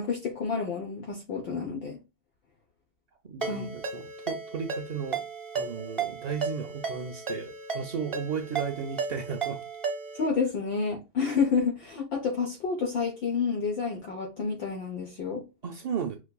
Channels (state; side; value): late; right; 2.7 ms